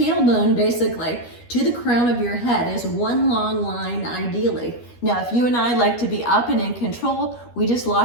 basically to the crown of your head is one long line ideally. Now, if you and I like to be up and in control, we just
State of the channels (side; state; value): right; late; 12 ms